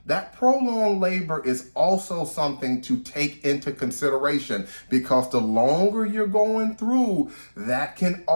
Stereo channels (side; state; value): both; inverted; correlation -1.00